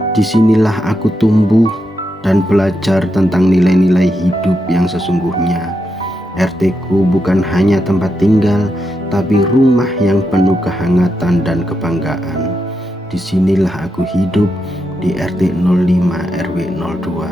Disinilah aku tumbuh dan belajar tentang nilai-nilai hidup yang sesungguhnya. RT-ku bukan hanya tempat tinggal, tapi rumah yang penuh kehangatan dan kebanggaan. Disinilah aku hidup di RT 05 RW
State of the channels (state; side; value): normal; both; correlation 0.84